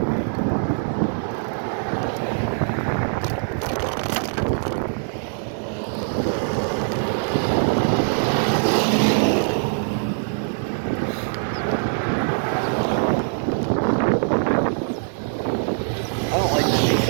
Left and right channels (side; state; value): left; silent; digital silence